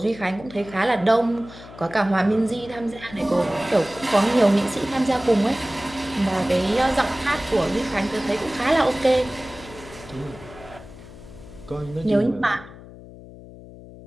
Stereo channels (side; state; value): left; noise; hum, 17 dB below the sound